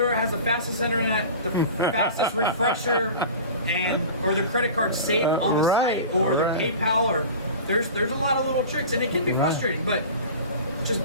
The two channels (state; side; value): inverted; both; correlation -0.36